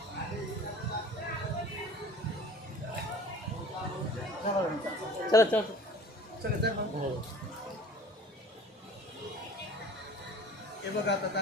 चला चला चला. हे बघा आता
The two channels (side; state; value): both; normal; correlation 0.43